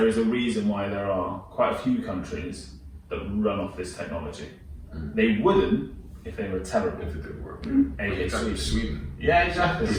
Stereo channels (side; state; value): both; identical; correlation 1.00